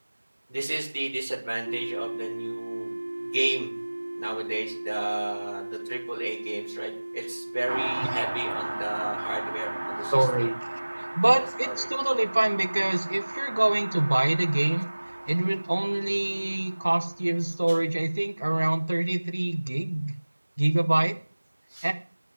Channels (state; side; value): inverted; both; correlation -1.00